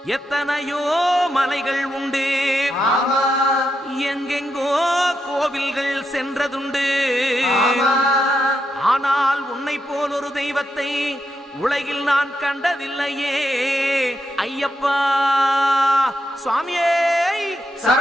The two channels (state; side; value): normal; both; correlation 0.84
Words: எத்தனையோ மலைகள் உண்டு, எங்கெங்கோ கோவில்கள் சென்றதுண்டு. ஆனால் உன்னை போல் ஒரு தெய்வத்தை உலகில் நான் கண்டதில்லையே ஐயப்பா. சுவாமியே